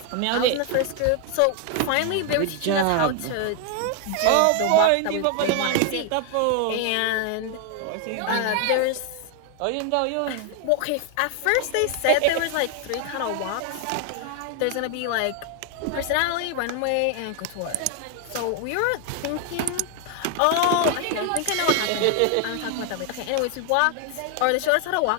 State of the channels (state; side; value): different; both; correlation 0.00